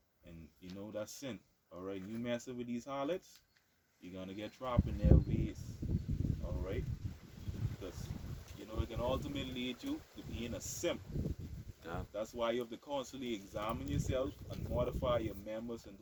And, you know, that's sin. All right? You messing with these harlots, you're going to get trapped in their ways. All right? Because, you know, it can ultimately lead you to being a simp. God. That's why you have to constantly examine yourself and mortify your members and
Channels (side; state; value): both; identical; correlation 1.00